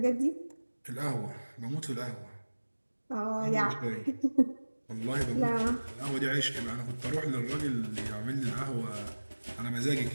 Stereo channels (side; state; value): both; inverted; correlation -1.00